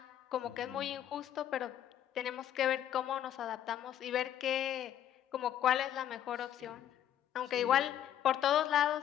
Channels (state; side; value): quieter; right; 10.9 dB